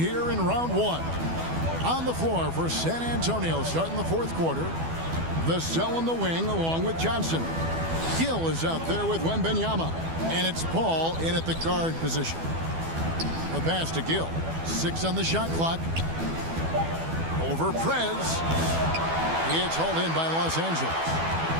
in round 1. On the floor for San Antonio, starting the fourth quarter. Vassell on the wing along with Johnson. Gill is out there with Wembanyama. And it's Paul in at the guard position. The pass to Gill. 6 on the shot clock. Over Prez. It's hauled in by Los Angeles.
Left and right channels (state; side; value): late; left; 12 ms